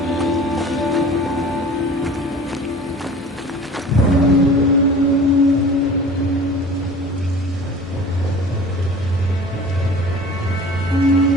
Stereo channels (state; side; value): normal; both; correlation 0.43